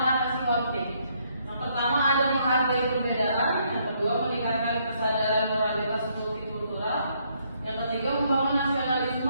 konflik. Yang pertama ada menghargai perbedaan, yang kedua meningkatkan kesadaran moralitas multikultural, yang ketiga membangun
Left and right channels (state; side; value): inverted; both; correlation -0.71